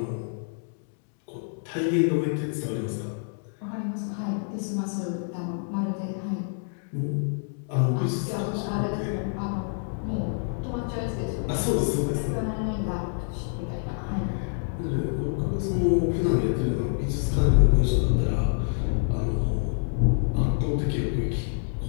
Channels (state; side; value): silent; right; digital silence